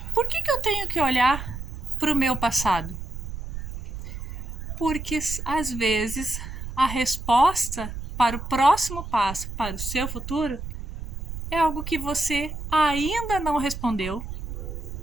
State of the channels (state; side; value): noise; right; rumble, 8 dB below the sound